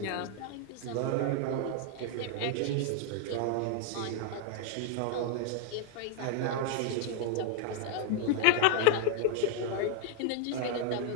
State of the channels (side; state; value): both; different; correlation 0.00